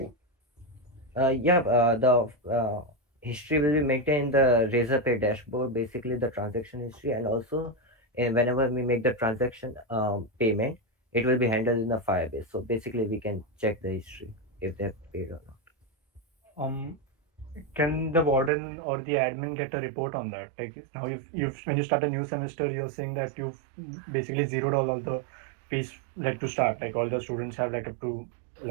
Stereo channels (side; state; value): left; drops out; at 18.5 s